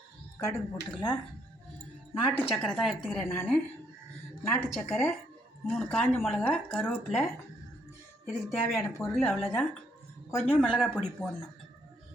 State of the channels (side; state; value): both; normal; correlation 0.71